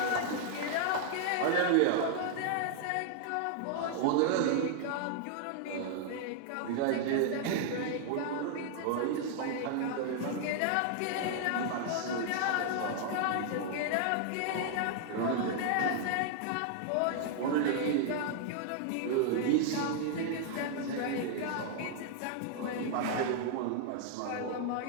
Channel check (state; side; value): different; both; correlation -0.01